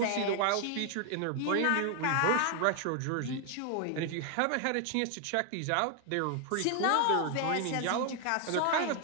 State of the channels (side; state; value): both; different; correlation 0.00